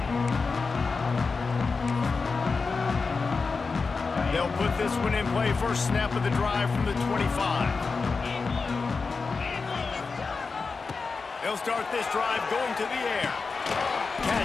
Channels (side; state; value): right; quieter; 4.5 dB